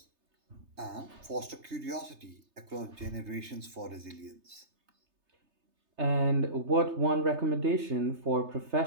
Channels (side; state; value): left; late; 3.3 ms